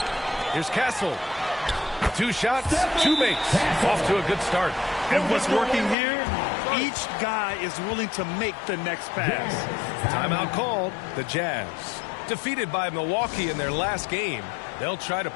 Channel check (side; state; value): right; drops out; at 6.0 s